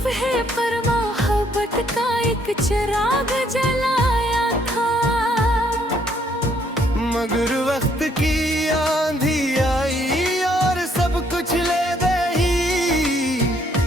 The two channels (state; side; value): normal; both; correlation 0.68